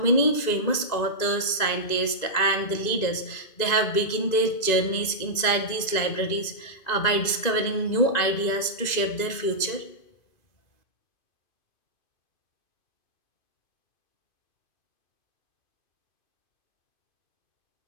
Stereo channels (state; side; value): late; right; 2.5 ms